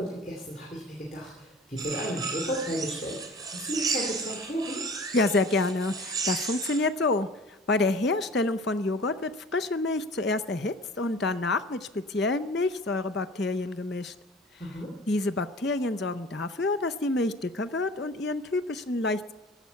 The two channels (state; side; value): normal; both; correlation 0.43